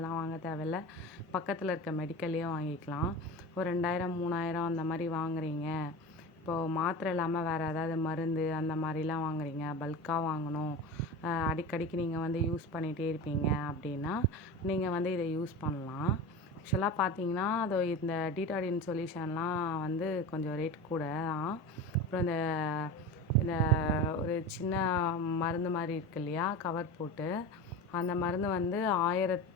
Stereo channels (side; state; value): both; normal; correlation 0.29